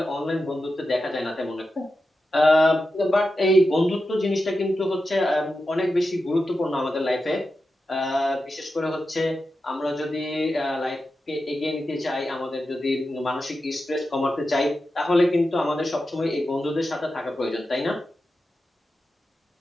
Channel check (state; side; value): normal; both; correlation 0.90